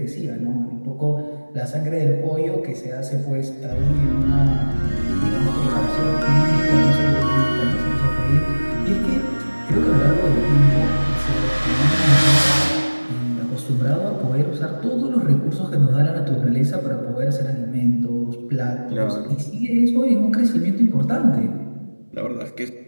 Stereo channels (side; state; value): both; inverted; correlation -1.00